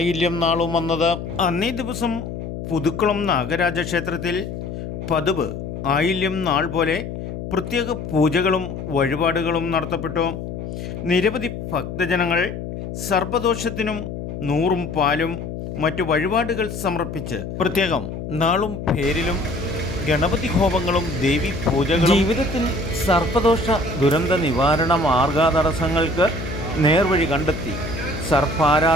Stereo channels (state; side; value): noise; left; hum, 7 dB below the sound